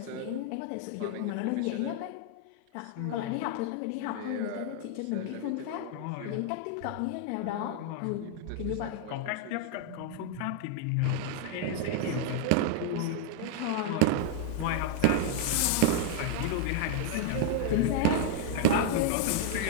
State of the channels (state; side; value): different; both; correlation 0.00